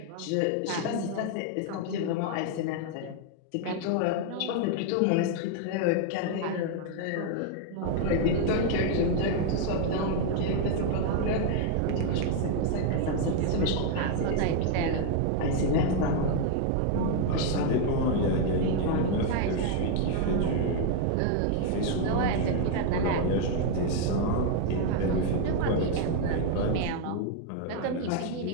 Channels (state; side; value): different; both; correlation 0.00